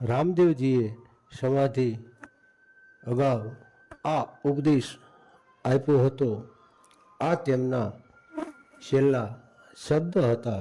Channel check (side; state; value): both; identical; correlation 1.00